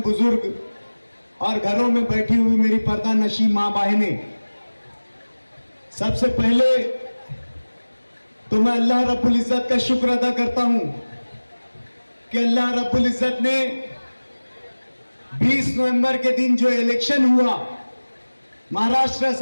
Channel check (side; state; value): both; inverted; correlation -1.00